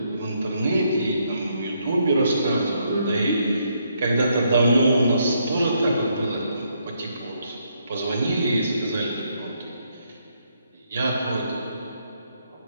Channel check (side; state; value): both; inverted; correlation -0.74